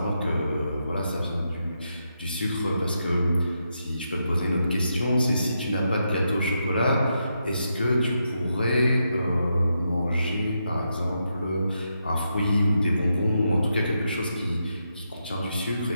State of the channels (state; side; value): inverted; both; correlation -0.83